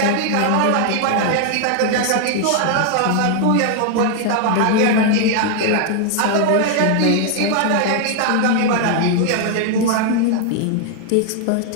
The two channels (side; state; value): both; different; correlation 0.00